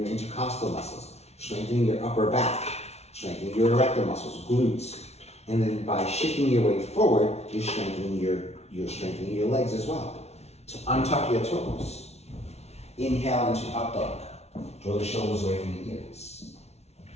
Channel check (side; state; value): right; late; 0.31 ms